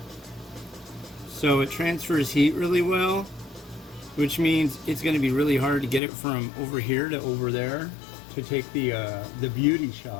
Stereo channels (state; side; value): drops out; right; at 6.0 s